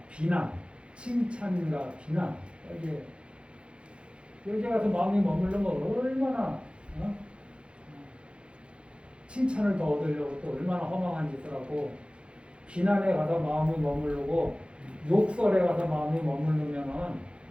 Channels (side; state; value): left; late; 0.057 ms